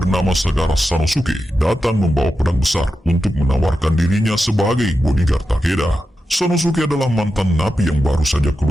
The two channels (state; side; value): normal; both; correlation 0.90